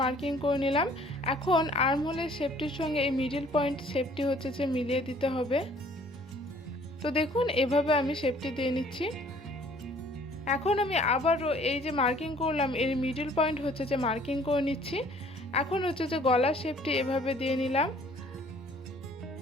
মার্কিং করে নিলাম। এখন আর্মহোলের শেপটির সঙ্গে এই মিডল পয়েন্ট শেপটি যে মিলিয়ে দিতে হবে। তো দেখুন এভাবে আমি শেপটি দিয়ে নিচ্ছি। এখন আমি আবারও এই যে মার্কিং করলাম এর মিডল পয়েন্ট যে মার্কিং করে নিচ্ছি। এখন যে গলার শেপটি এভাবে দিয়ে নিলাম।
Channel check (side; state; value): both; normal; correlation 0.56